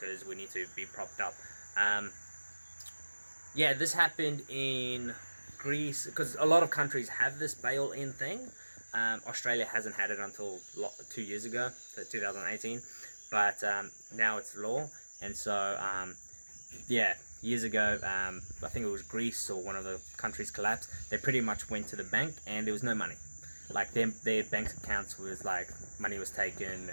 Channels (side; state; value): both; inverted; correlation -1.00